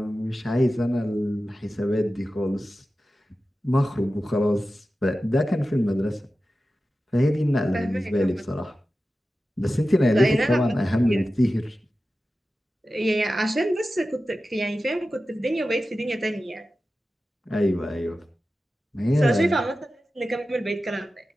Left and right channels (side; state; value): both; normal; correlation 0.94